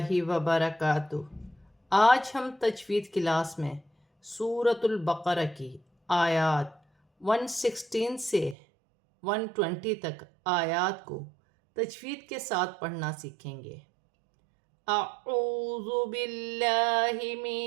وبرکاتہ۔ آج ہم تجوید کلاس میں سورۃ البقرہ کی آیات 116 سے 120 تک آیات کو تجوید کے ساتھ پڑھنا سیکھیں گے۔ اعوذ باللہ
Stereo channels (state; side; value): drops out; left; at 8.6 s